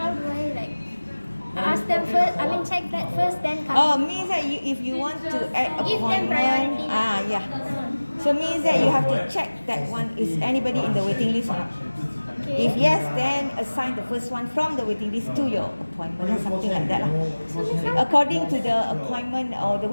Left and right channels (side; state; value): both; inverted; correlation -1.00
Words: do I like ask them first? I mean check that first then come. Means that if you want to add Give them appointment, priority. yeah. So means that you have to check that one is anybody in the waiting list or not. Okay. If yes, then assign the first one from the waiting list to your appointment or something like that lah. According to the appointment or the